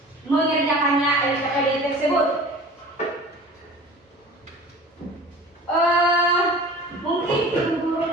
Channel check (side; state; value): both; normal; correlation 0.41